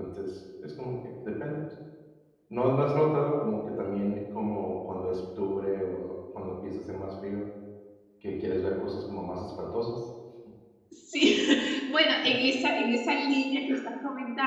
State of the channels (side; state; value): both; identical; correlation 1.00